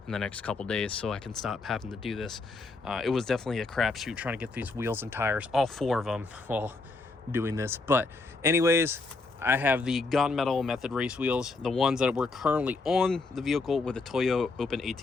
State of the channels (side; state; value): right; quieter; 3.7 dB